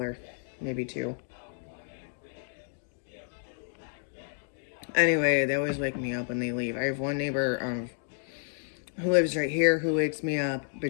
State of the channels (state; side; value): silent; right; digital silence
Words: maybe two. Anyway, they always wake me up when they leave. I have one neighbor who lives right here who wakes me up